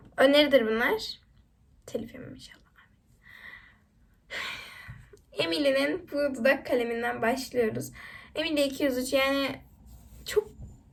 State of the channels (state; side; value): identical; both; correlation 1.00